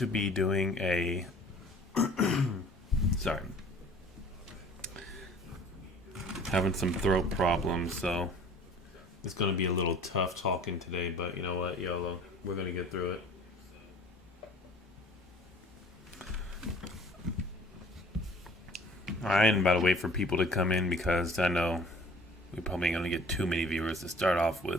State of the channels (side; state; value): both; normal; correlation 0.50